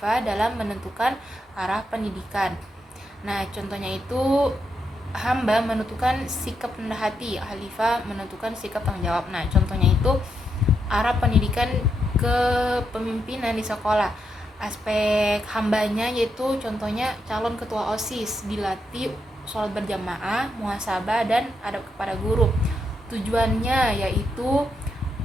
dalam menentukan arah pendidikan. Nah, contohnya itu hamba menentukan sikap rendah hati, khalifah menentukan sikap tanggung jawab. Nah, contohnya itu arah pendidikan kepemimpinan di sekolah. Aspek hambanya yaitu contohnya calon ketua OSIS, dilatih sholat berjamaah, muhasabah, dan adab kepada guru. Tujuannya yaitu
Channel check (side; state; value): both; normal; correlation 0.81